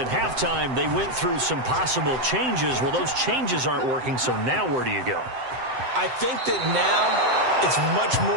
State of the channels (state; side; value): late; left; 7.8 ms